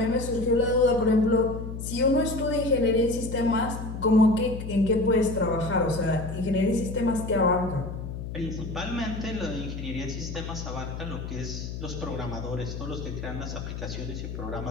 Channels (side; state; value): left; noise; hum, 7 dB below the sound